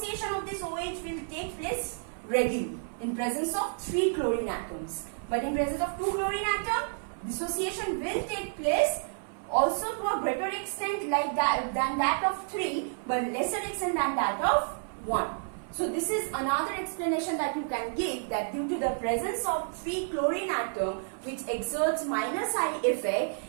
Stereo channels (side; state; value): left; silent; 56 dB below the other